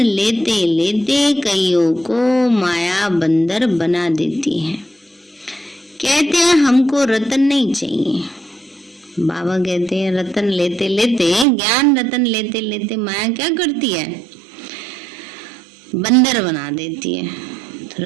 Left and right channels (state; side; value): drops out; left; at 11.5 s